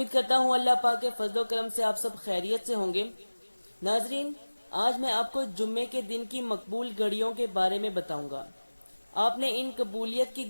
کرتا ہوں اللہ پاک کے فضل و کرم سے آپ سب خیریت سے ہوں گے۔ ناظرین، آج میں آپ کو جمعے کے دن کی مقبول گھڑیوں کے بارے میں بتاؤں گا۔ آپ نے ان قبولیت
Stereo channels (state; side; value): inverted; both; correlation -1.00